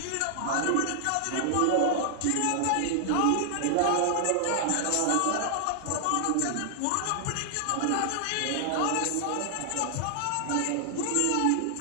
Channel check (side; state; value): both; different; correlation -0.01